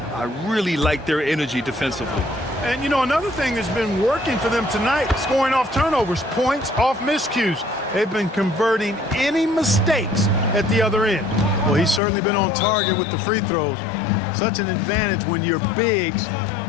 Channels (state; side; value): drops out; right; at 12.0 s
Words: I really like their energy defensively. And, you know, another thing that's been working for them tonight, scoring off turnovers, points off miscues. They've been converting any mistakes at the other end. Well, he's certainly been on target with the free throws. Such an advantage when your bigs